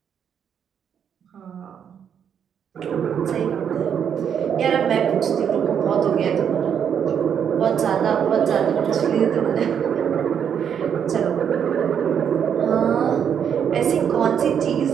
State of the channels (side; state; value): left; quieter; 8.1 dB